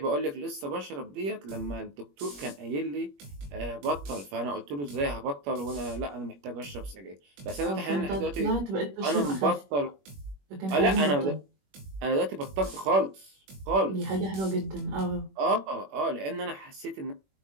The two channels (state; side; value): late; left; 21 ms